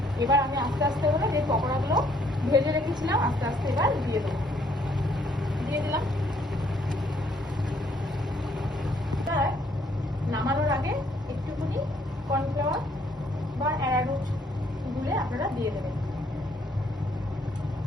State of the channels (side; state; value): both; normal; correlation 0.66